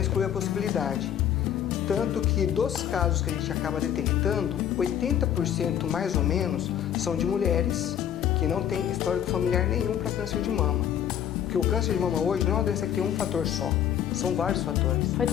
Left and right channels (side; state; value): right; quieter; 9.9 dB